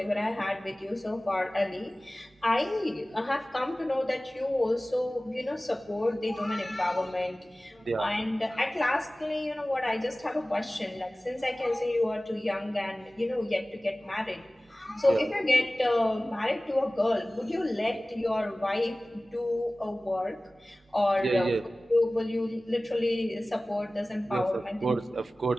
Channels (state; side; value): normal; both; correlation 0.98